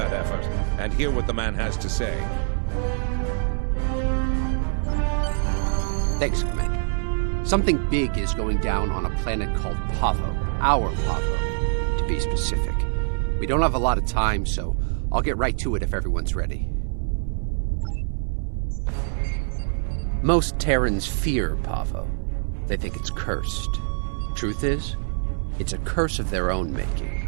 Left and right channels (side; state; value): left; silent; digital silence